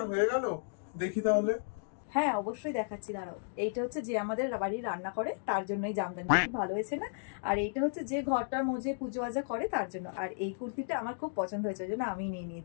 হয়ে গেল? দেখি তাহলে। হ্যাঁ অবশ্যই দেখাচ্ছি, দাঁড়াও। এইটা হচ্ছে যে আমাদের বাড়ি রান্না করে তার জন্য এই জামদানি, খুব ভালো হয়েছে না? আর এইটা হচ্ছে যে ঘরটার মধ্যে পুজো আজা করে তার জন্য। আর এই কুর্তিটা আমার খুব পছন্দ হয়েছে, ওই জন্য আমি নিয়ে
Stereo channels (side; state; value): right; silent; digital silence